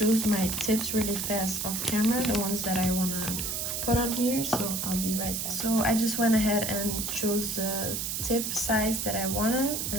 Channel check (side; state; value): right; noise; hiss, 2 dB below the sound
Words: my tips really fast off camera, the ones that I want to put on here, so I'll be right back. So I just went ahead and chose the tip size that I wanted,